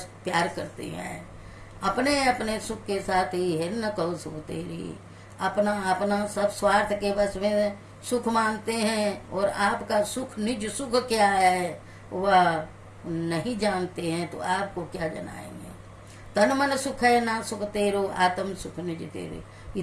प्यार करते हैं। अपने अपने सुख के साथ ही है न कहो सुख तेरी। अपना अपना सब स्वार्थ के बस में सुख मानते हैं, और आपका सुख निज सुख क्या है वह नहीं जानते हैं, तो आपको क्या जनाएंगे। तन मन सुख है ना सुख तेरो, आत्म सुख निज तेरे। ये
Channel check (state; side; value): identical; both; correlation 1.00